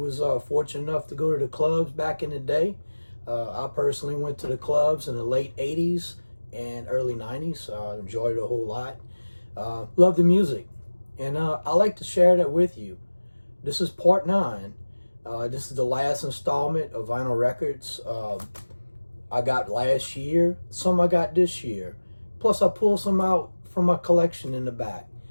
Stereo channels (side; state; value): both; inverted; correlation -1.00